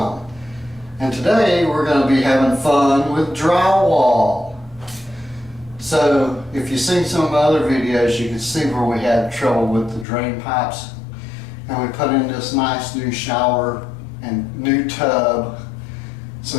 And today we're going to be having fun with drywall. So, if you've seen some of my other videos, you can see where we had trouble with the drain pipes. And we put in this nice new shower and new tub.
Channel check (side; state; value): right; drops out; at 10.1 s